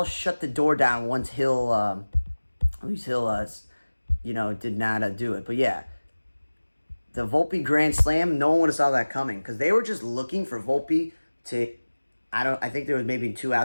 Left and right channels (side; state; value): both; inverted; correlation -1.00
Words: shut the door down once Luis Hill did not do it. But yeah, the Volpe grand slam, no one would have saw that coming because they were just looking for Volpe to, I think there was maybe 2